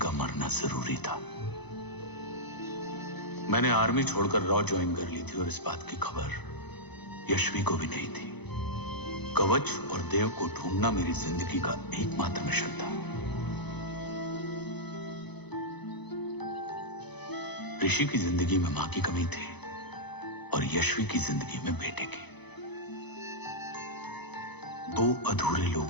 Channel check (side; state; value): right; late; 0.99 ms